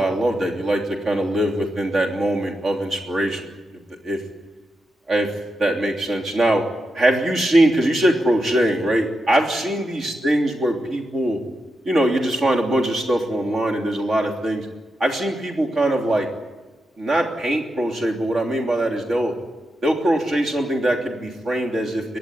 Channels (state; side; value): normal; both; correlation 0.87